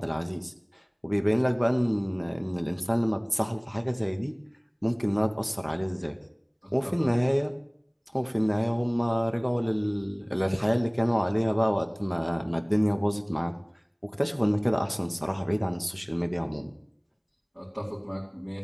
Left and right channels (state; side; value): identical; both; correlation 1.00